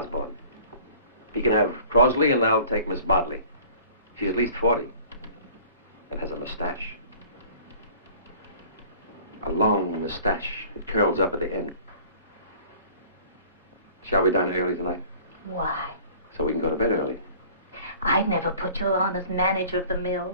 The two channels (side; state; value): both; inverted; correlation -0.49